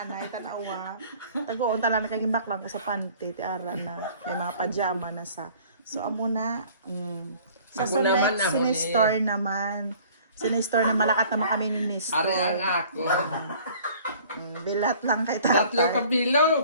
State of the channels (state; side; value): inverted; both; correlation -0.52